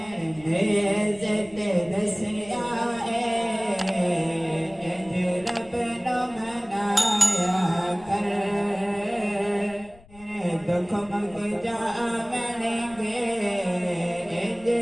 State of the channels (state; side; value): noise; left; rumble, 24 dB below the sound